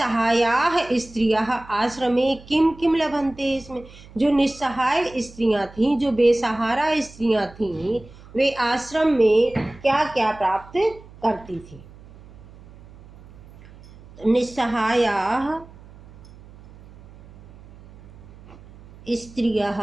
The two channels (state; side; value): noise; right; hum, 21 dB below the sound